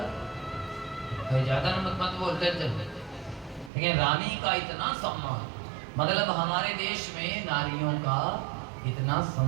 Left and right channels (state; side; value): drops out; left; at 3.7 s